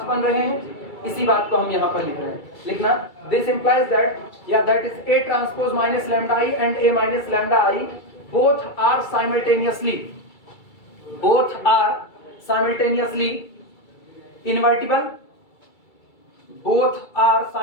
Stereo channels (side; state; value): right; late; 2.3 ms